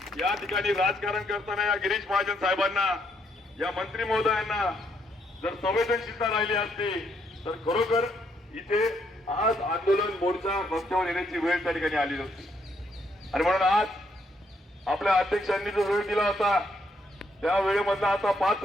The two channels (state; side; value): normal; both; correlation 0.74